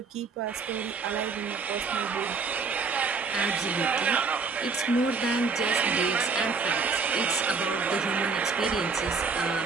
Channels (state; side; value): quieter; left; 4.7 dB